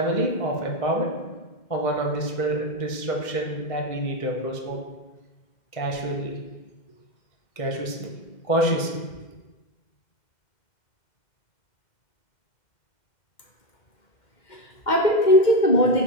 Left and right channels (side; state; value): right; late; 2.1 ms